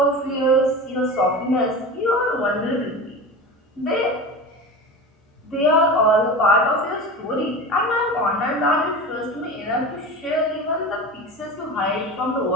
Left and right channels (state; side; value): normal; both; correlation 0.30